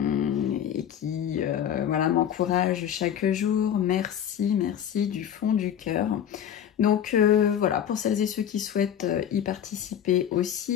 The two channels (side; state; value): right; quieter; 9.6 dB